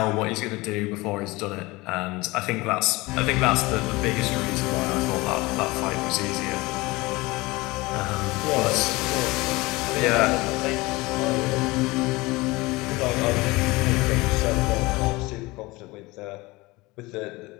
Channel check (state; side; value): quieter; right; 22.1 dB